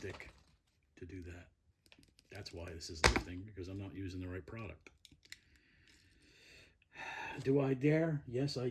to do that. That's why this is lifting, because I'm not using the right product. Do I dare? Yes, I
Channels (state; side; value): identical; both; correlation 1.00